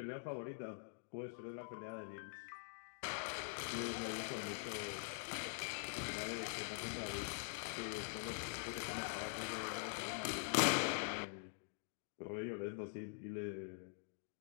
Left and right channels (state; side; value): silent; right; digital silence